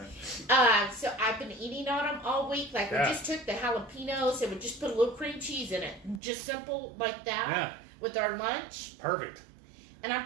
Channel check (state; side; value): drops out; left; at 6.2 s